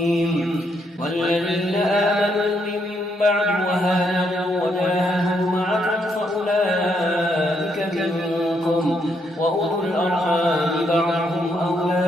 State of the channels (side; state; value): both; normal; correlation 0.75